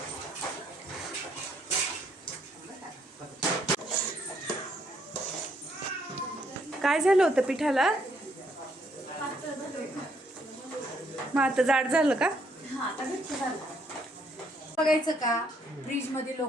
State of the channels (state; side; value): normal; both; correlation 0.70